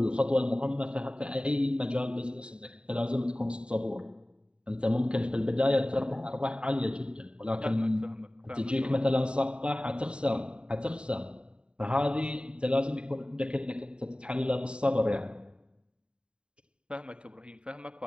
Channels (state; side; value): late; left; 0.052 ms